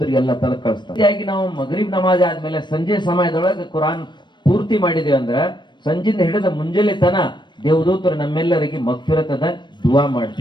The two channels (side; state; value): right; late; 0.22 ms